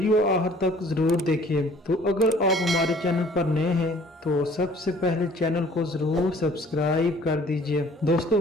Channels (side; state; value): both; normal; correlation 0.54